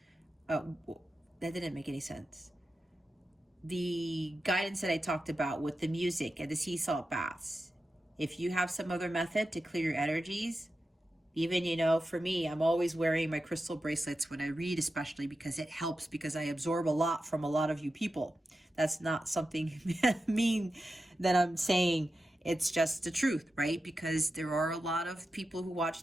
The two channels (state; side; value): normal; both; correlation 0.91